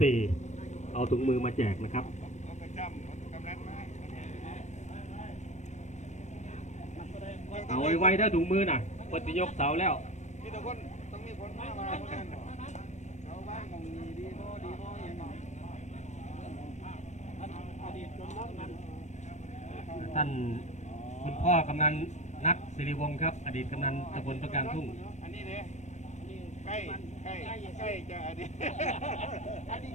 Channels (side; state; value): right; late; 0.34 ms